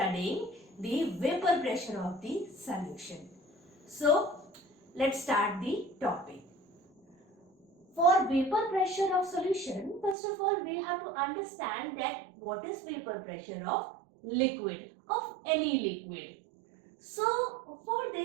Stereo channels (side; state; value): left; drops out; at 10.2 s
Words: the vapor pressure of the solution. So let's start the topic. For vapor pressure of solution, first of all we have to understand that what is vapor pressure of liquid, of any liquid. So for